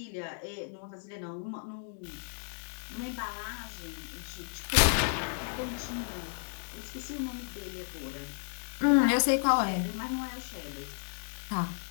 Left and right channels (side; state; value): right; silent; digital silence